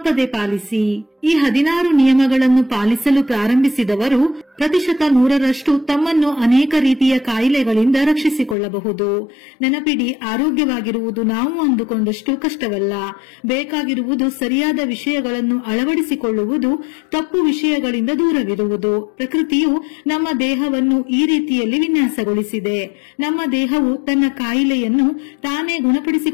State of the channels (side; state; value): right; drops out; at 8.6 s